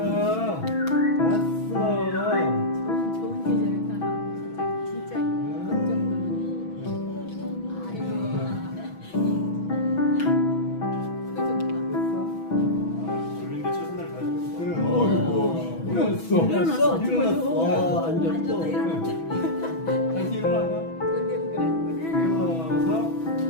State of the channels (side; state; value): right; late; 6.1 ms